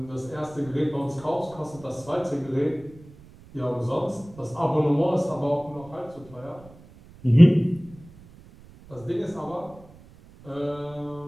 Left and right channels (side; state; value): right; noise; rumble, 22 dB below the sound